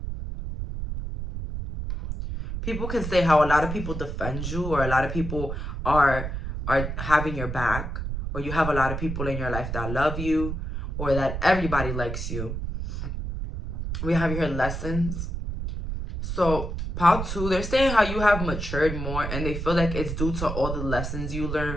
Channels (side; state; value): right; noise; rumble, 4 dB below the sound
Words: People can say how a lot of people defend you, or a lot of people are having your back, or you have a lot of people in your life that love you, or that everybody likes you. We have your lessons. So pile 2, they're saying how you have matured more, and they feel like it's due to all the lessons you